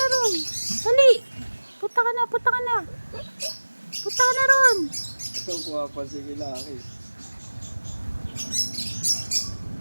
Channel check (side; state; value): both; inverted; correlation -1.00